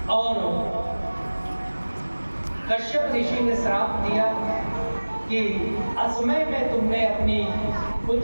और कश्यप ऋषि ने श्राप दिया कि असमय में तुमने अपनी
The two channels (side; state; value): both; inverted; correlation -1.00